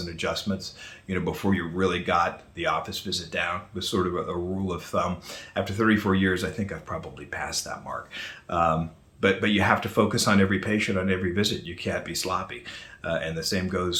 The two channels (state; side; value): identical; both; correlation 1.00